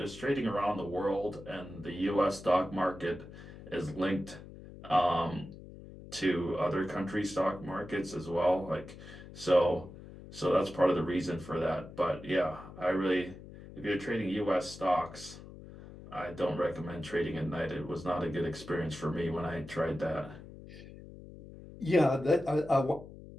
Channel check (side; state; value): left; noise; hum, 16 dB below the sound